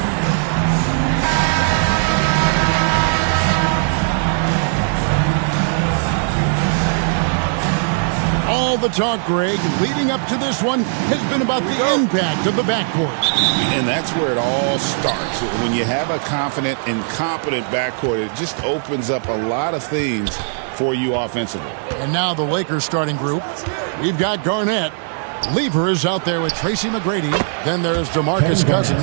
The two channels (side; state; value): left; silent; digital silence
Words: All the talk, Greg, leading up to this one has been about the impact of the backcourt. And that's where it all starts. When you have a confident and competent backcourt, it just opens up a lot of things for you offensively. And now the Lakers starting group. We've got Garnett. Lever is out there with Tracy McGrady. Then there's DeMarcus